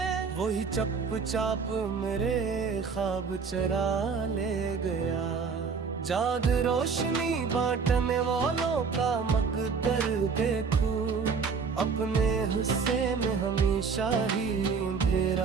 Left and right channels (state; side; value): quieter; left; 5.4 dB